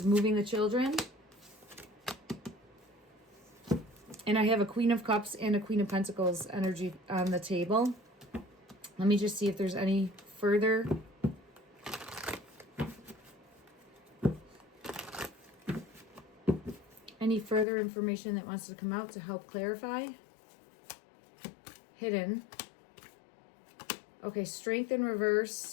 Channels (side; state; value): right; drops out; at 17.7 s